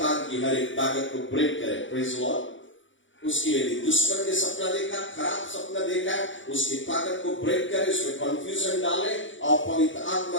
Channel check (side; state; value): right; late; 0.56 ms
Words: की हर एक ताकत को ब्रेक करें। Praise Lord. उसकी यदि दुश्मन के सपना देखा, खराब सपना देखा, उसकी ताकत को ब्रेक करे, उसमें कंफ्यूजन डाले और पवित्र